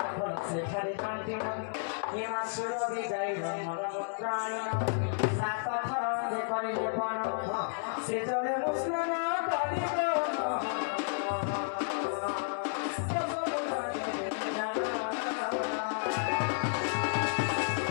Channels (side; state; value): right; silent; digital silence